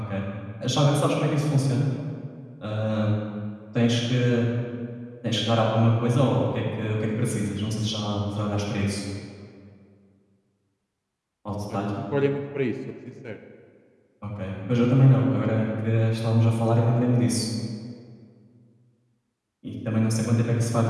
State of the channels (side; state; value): both; identical; correlation 1.00